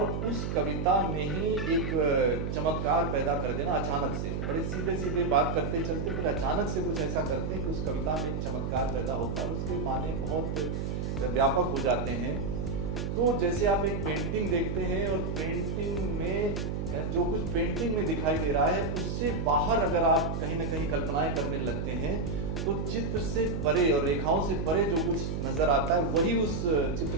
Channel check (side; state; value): right; noise; hum, 2 dB below the sound